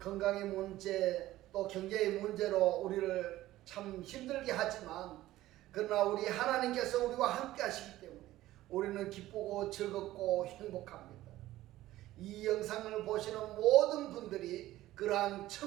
건강의 문제 또 경제의 문제로 우리를 참 힘들게 하지만 그러나 우리 하나님께서 우리와 함께 하시기 때문에 우리는 기쁘고 즐겁고 행복합니다. 이 영상을 보시는 모든 분들이 그러한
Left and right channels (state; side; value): quieter; left; 15.5 dB